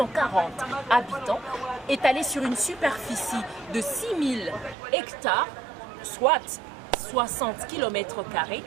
habitants, étalée sur une superficie de 6 000 hectares, soit 60 km²,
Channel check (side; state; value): left; drops out; at 4.8 s